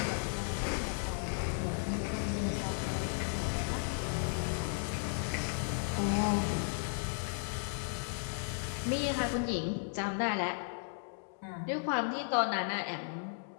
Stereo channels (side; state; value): right; silent; digital silence